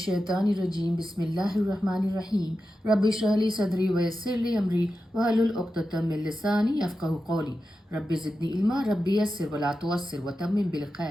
बिस्मिल्लाहिर्रहमानिर्रहीम रब्बि इश्रह ली सदरी वयस्सिर ली अमरी वहलुल उक़्दतम मिन लिसानी यफ़क़हू क़ौली रब्बि ज़िदनी इल्मा रब्बि यस्सिर वला तुअस्सिर वतम्मिम बिल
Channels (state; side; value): normal; both; correlation 0.91